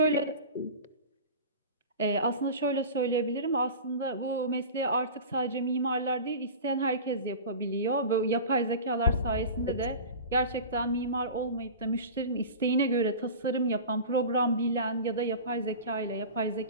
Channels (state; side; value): inverted; both; correlation -0.33